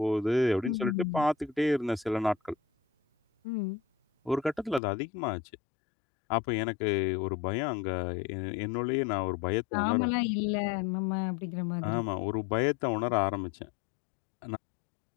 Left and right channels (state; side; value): drops out; right; at 4.8 s